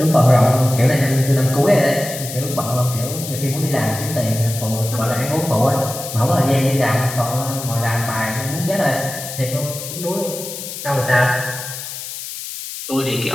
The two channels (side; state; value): left; noise; hiss, 9 dB below the sound